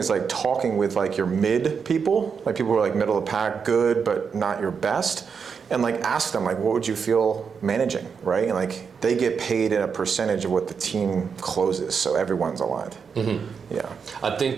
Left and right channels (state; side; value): quieter; left; 6.1 dB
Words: talking with your mid people, people who are middle of the pack, good, but not your best, and ask them what would you feel managing, right? And they get paid in a percentage of what the team closes, so everyone's aligned. Yeah. I think